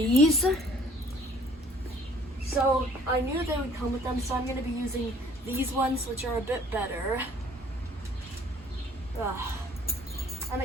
So I knew they would come with them, so I'm going to be using these ones, which are a bit better. And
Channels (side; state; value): both; normal; correlation 0.56